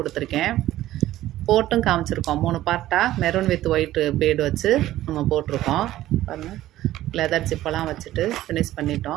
போட்டும் காமிச்சிருக்கோம். 3 பார்ட்டாக மெரூன் வித் ஒயிட் பீடு வச்சு நம்ம போட்டிருக்கோம் பாருங்கள். லெதர் ஜிப்பெல்லாம் வச்சுட்டு ஃபினிஷ்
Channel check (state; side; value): quieter; left; 14.5 dB